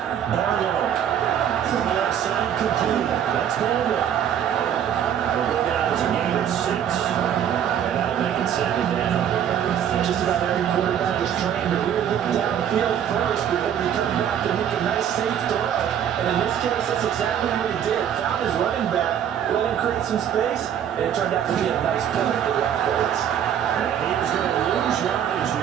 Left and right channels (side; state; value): left; quieter; 9.3 dB